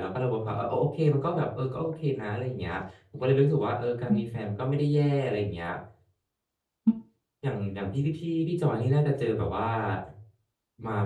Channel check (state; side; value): identical; both; correlation 1.00